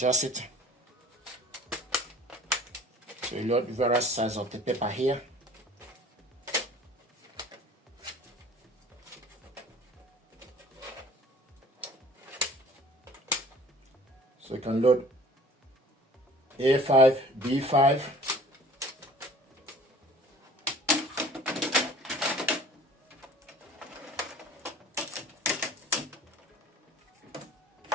it. So you load various sizes of the paper here. So you can load A5, B5.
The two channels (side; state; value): both; normal; correlation 0.47